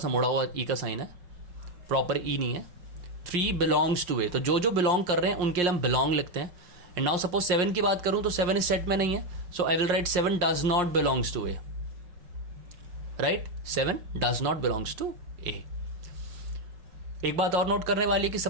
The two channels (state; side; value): late; left; 5.6 ms